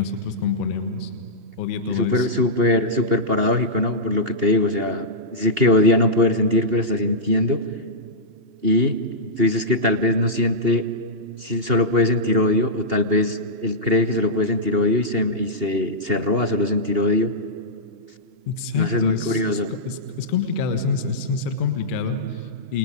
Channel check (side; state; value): left; late; 2.8 ms